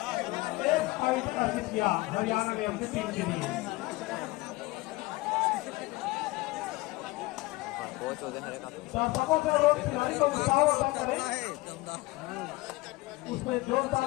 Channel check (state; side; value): quieter; right; 20.9 dB